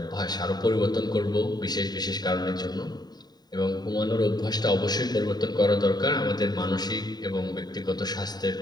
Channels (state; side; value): late; right; 0.20 ms